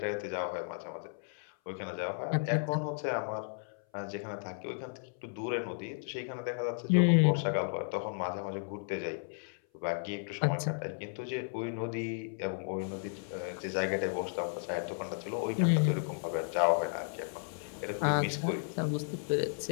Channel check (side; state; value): right; silent; 55 dB below the other